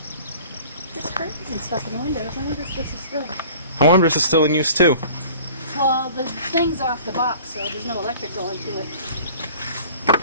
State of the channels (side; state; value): both; inverted; correlation -0.47